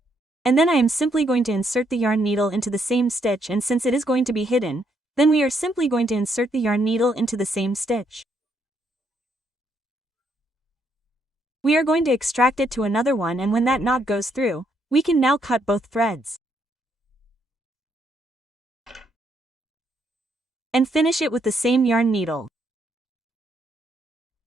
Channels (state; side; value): normal; both; correlation 0.74